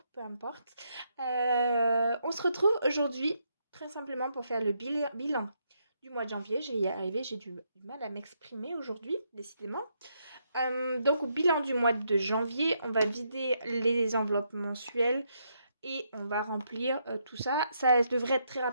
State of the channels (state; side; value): inverted; both; correlation -0.77